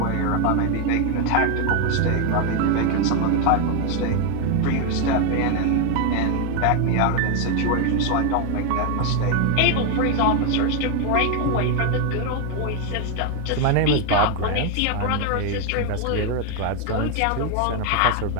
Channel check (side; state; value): both; different; correlation 0.01